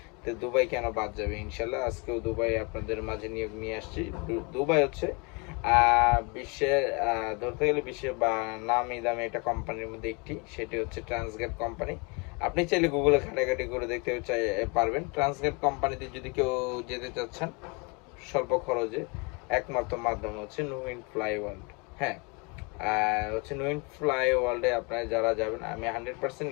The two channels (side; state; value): right; quieter; 30.9 dB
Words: তো দুবাই কেন বাদ যাবে? ইনশাল্লাহ আজকেও দুবাই আপনাদের মাঝে নিয়োগ নিয়ে আসছি। দুবাই বিশ্বের, ধরতে গেলে বিশ্বের বা নামি দামি একটা কোম্পানির মধ্যে একটি, সেটি হচ্ছে ট্রান্সগেট কোম্পানি। আপনি চাইলে গুগলে ঘাটাঘাটি করে দেখতে পারবেন। ট্রান্সগেট কোম্পানিতে যদি কেউ যেতে চাচ্ছেন স্বল্প খরচে, একমাত্র মাধ্যম হচ্ছে নুইন ফ্লাই ওয়ার্ল্ড। হ্যাঁ, নুইন ফ্লাই ওয়ার্ল্ডে আপনারা যারা যাবেন, আমি 100%